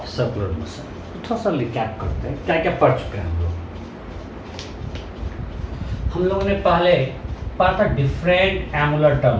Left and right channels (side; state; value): both; identical; correlation 1.00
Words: circular motion. थोड़ा सा रिकैप करते हैं, क्या क्या पढ़ चुके हैं हम लोगों ने पहले पढ़ा था डिफरेंट एंगुलर